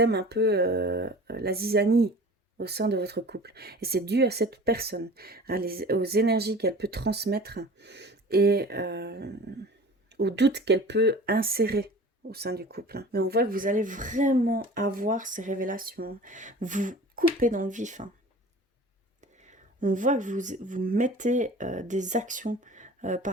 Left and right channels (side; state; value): both; normal; correlation 0.41